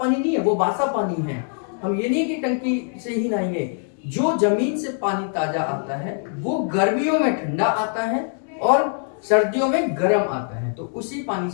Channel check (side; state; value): right; silent; 62 dB below the other